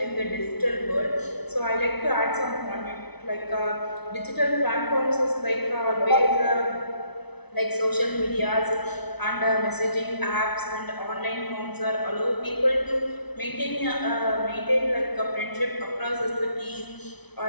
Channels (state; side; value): late; right; 0.99 ms